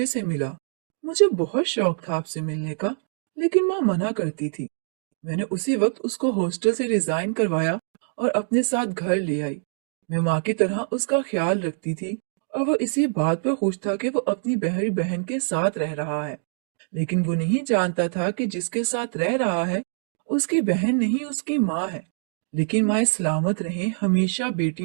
से मिला। मुझे बहुत शौक था आपसे मिलने का, लेकिन माँ मना करती थी। मैंने उसी वक्त उसको हॉस्टल से रिजाइन करवाया और अपने साथ घर ले आई। मैं माँ की तरह उसका ख्याल रखती थी और वो इसी बात पर खुश था कि वो अपनी बहरी बहन के साथ रह रहा है। लेकिन वो नहीं जानता था कि जिसके साथ रह रहा है उसकी बहन नहीं, उसकी माँ है। लेकिन माँ सलामत रहें हमेशा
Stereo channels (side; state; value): left; silent; digital silence